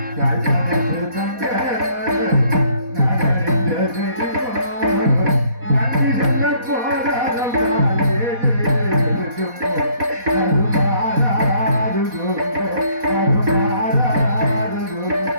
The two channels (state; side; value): late; left; 4.1 ms